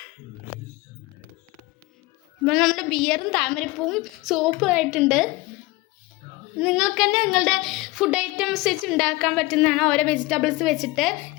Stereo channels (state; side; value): quieter; right; 21.7 dB